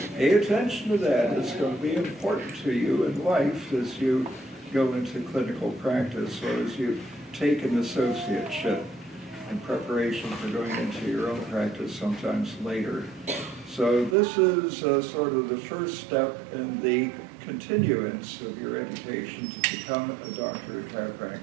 pay attention to that. It's going to be important to you in life as you go into clinical practice or as you take an associateship. in preparation for going into your own practice sometimes later. So this is sort of the first step in the continuance of your education to become a doctor of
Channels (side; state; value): left; drops out; at 14.2 s